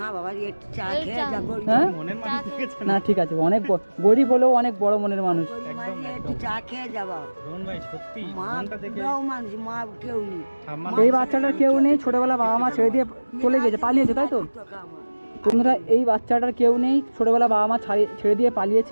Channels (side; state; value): both; inverted; correlation -1.00